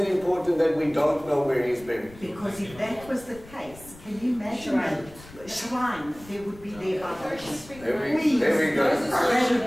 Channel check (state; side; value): noise; left; rumble, 20 dB below the sound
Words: important that we don't know where he's buried? Because if that was the case, can you imagine a shrine there would be there by There we go.